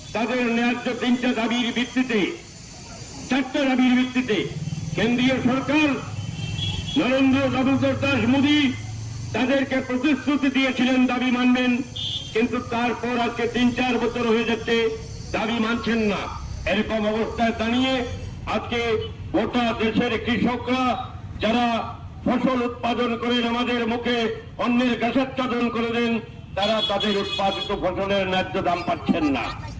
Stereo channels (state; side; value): identical; both; correlation 1.00